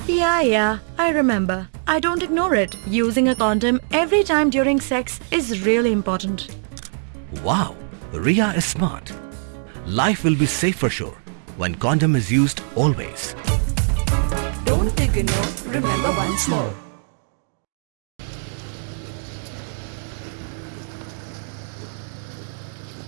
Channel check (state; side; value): silent; left; digital silence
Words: Yeah, I remember. I don't ignore it. Using a condom every time during sex is really important. Wow, Ria is smart. Life will be safe for sure when condom is used always. Don't ignore, remember once more.